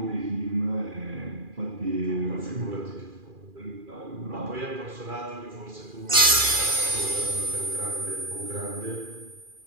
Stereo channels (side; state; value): left; late; 2.4 ms